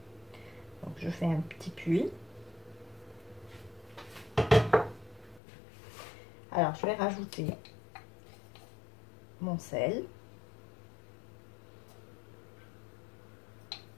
Donc je fais un petit puits. Alors je vais rajouter mon sel.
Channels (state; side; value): drops out; right; at 5.4 s